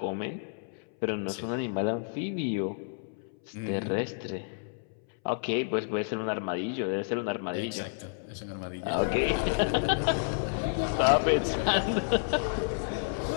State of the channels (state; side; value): silent; right; 58 dB below the other